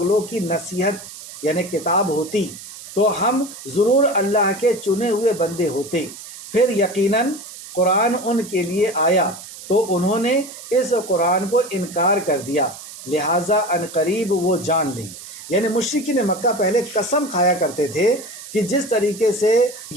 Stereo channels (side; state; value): right; noise; hiss, 14 dB below the sound